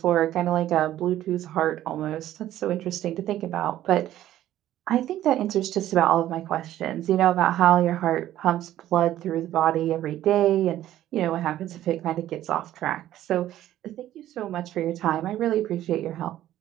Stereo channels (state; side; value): quieter; left; 13.1 dB